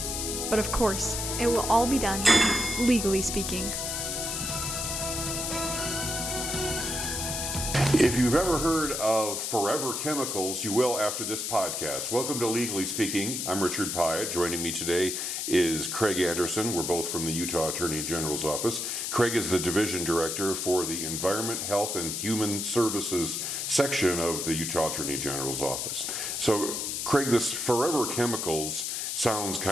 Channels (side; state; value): left; noise; hiss, 2 dB below the sound